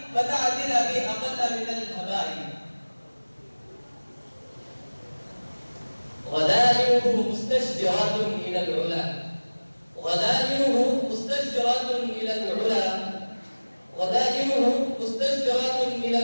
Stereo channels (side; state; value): both; inverted; correlation -1.00